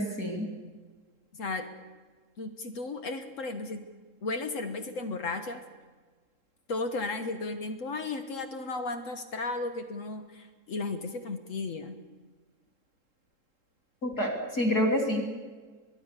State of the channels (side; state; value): right; late; 3.7 ms